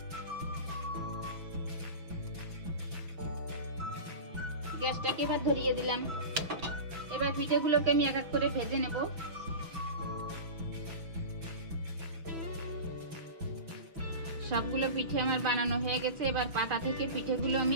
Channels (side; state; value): left; late; 6.0 ms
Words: গ্যাসটাকে এবার ধরিয়ে দিলাম। এবার পিঠেগুলোকে আমি এক এক করে ভেজে নেব। সবগুলো পিঠে আমার বানানো হয়ে গেছে। এবার পাতা থেকে পিঠেগুলো